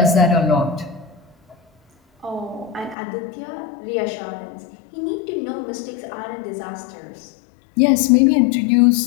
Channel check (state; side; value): drops out; right; at 3.0 s